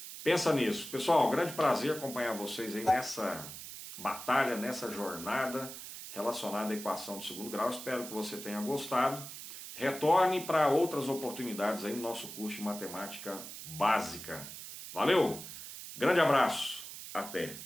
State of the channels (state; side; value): noise; right; hiss, 11 dB below the sound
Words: Pensa nisso. Pessoal, um grande prazer acompanhar vocês aí nessa batalha, nessa jornada relacionada à equação de segundo grau. Espero que você tenha gostado. Retorne para outras oportunidades aí no nosso curso de matemática básica. Valeu! Grande abraço, até!